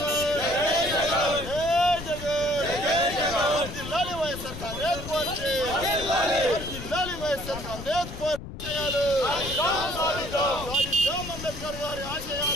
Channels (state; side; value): noise; left; rumble, 10 dB below the sound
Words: వర్ధిల్లాలి వైఎస్ఆర్ కాంగ్రెస్ పార్టీ, వర్ధిల్లాలి వైఎస్ఆర్ కాంగ్రెస్ పార్టీ. సాధిద్దాం అంబేద్కర్ గారి